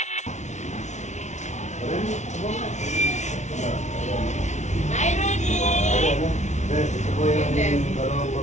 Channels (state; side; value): late; right; 0.33 ms